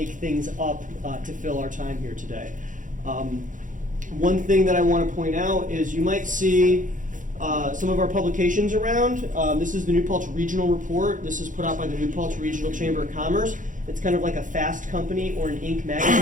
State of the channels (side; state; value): left; late; 0.38 ms